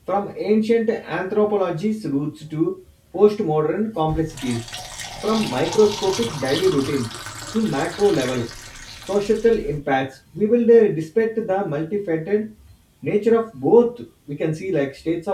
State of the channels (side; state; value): both; identical; correlation 1.00